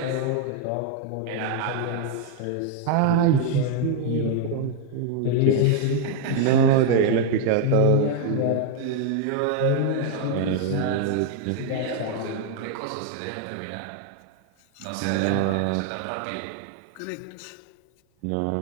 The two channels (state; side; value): different; both; correlation 0.00